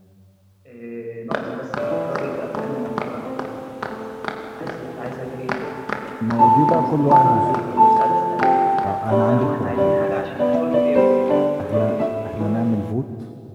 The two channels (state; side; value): identical; both; correlation 1.00